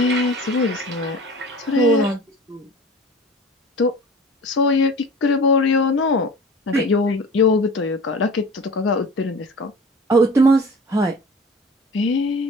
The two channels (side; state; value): both; normal; correlation 0.39